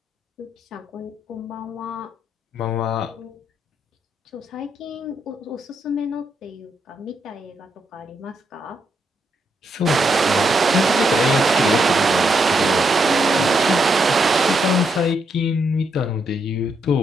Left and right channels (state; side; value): normal; both; correlation 0.78